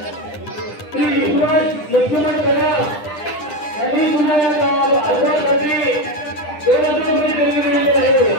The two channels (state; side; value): late; right; 10 ms